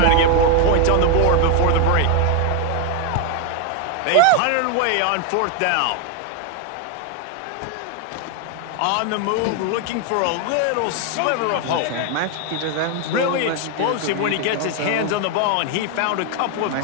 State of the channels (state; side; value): different; both; correlation 0.01